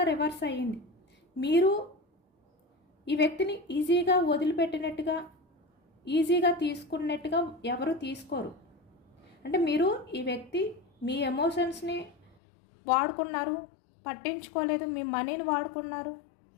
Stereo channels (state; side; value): drops out; right; at 12.4 s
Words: రివర్స్ అయ్యింది. మీరు ఈ వ్యక్తిని ఈజీగా వదిలిపెట్టినట్టుగా, ఈజీగా తీసుకున్నట్టుగా ఎవరు తీసుకోరు. అంటే మీరు ఈ వ్యక్తి మీ ఎమోషన్స్ని వాడుకున్నారు, పట్టించుకోలేదు, మీ మనీని వాడుకున్నారు.